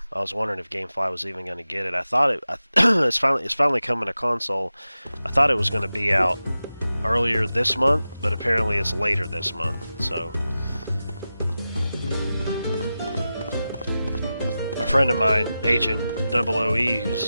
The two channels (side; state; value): both; inverted; correlation -0.93